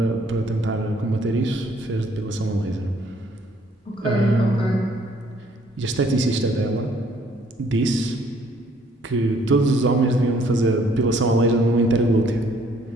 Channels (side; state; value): both; normal; correlation 0.63